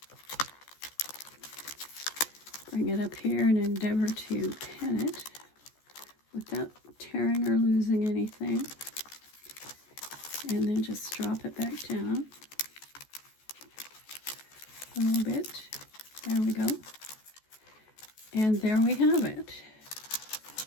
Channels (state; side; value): late; right; 14 ms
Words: Bring it up here and endeavor to pin it without tearing or losing anything. And then just drop it back down a little bit. There we go. And there we have it.